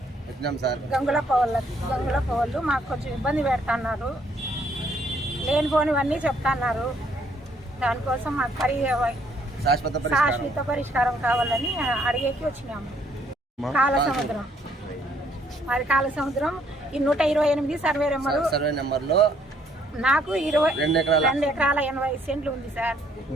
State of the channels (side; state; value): both; normal; correlation 0.66